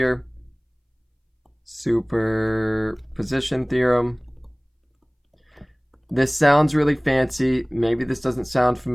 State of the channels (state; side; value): identical; both; correlation 1.00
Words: Superposition theorem. This sounds really fancy. Maybe this doesn't sound